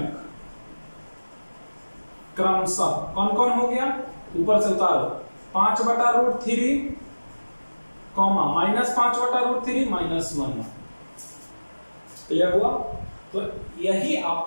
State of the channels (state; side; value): inverted; both; correlation -1.00